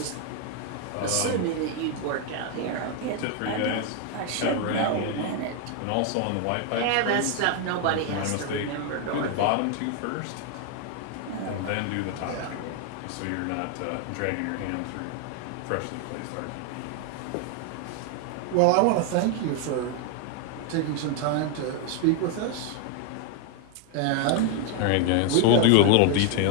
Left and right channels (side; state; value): both; different; correlation 0.00